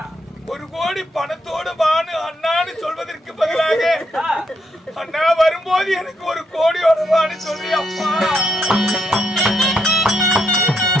1 கோடி பணத்தோடு வான்னு அண்ணான்னு சொல்வதற்கு பதிலாக அண்ணா வரும்போது எனக்கு 1 கோடியோட வான்னு சொல்லி அப்பா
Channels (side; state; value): both; normal; correlation 0.77